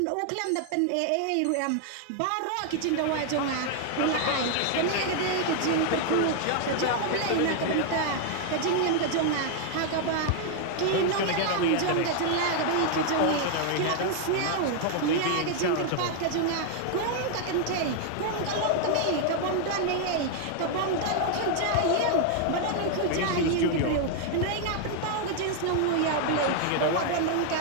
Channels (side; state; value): both; different; correlation 0.00